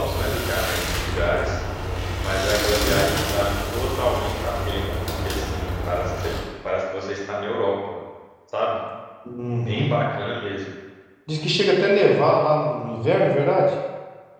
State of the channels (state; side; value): identical; both; correlation 1.00